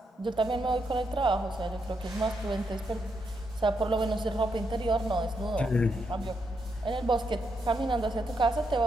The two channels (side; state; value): both; normal; correlation 0.80